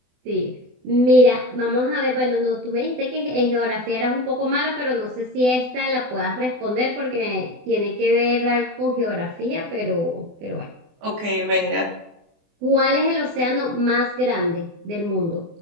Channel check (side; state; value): left; late; 24 ms